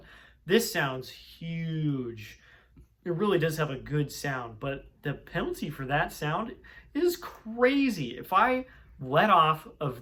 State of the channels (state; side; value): identical; both; correlation 1.00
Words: This sounds huge. It really does have a good sound, but the penalty for that sound is crazy. If I let off